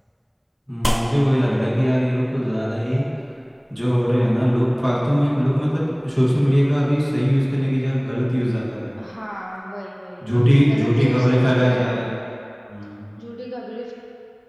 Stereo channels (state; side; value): identical; both; correlation 1.00